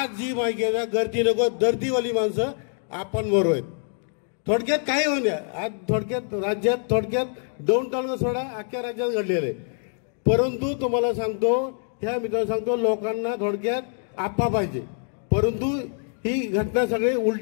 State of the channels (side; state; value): right; silent; 56 dB below the other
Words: जी माहिती आहे गर्दी नको दर्दीवाली माणसं आपण बरोबर आहेत. थोडक्यात काय होऊ द्या, आज राज्यात दौंड तालुका सोडा अख्ख्या राज्यात घडलेलं आहे. परंतु तुम्हाला सांगतो, ह्या मित्रांनो सांगतो, लोकांना थोडक्यात आप्पा पाहिजे. परंतु ही घटना सगळी